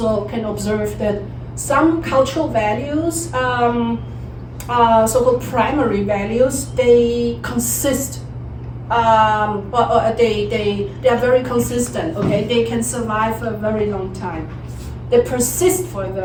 can observe that some cultural values, so-called primary values, they consist. They are very consistent, okay? They can survive for a very long time. They persist for a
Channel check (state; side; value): identical; both; correlation 1.00